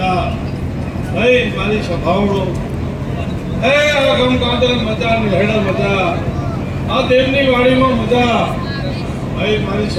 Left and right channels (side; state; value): both; identical; correlation 1.00